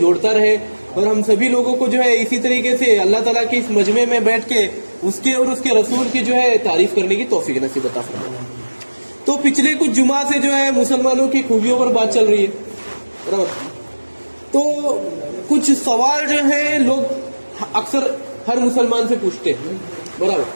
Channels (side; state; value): both; inverted; correlation -1.00